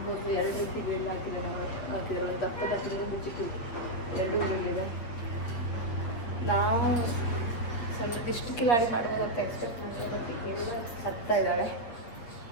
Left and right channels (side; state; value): right; late; 8.4 ms